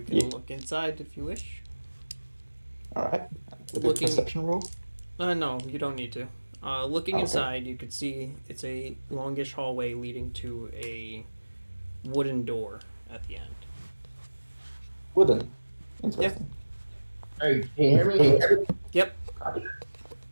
can Yeah. look inside if you wish. All right. With Looking- a perception roll. No, you don't need to. Looking Okay. inside, you could see it's a longish hallway leading to a wooden door at the end. Wooden. Interesting. Hey, can you hear me? Yep.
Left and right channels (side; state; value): both; inverted; correlation -1.00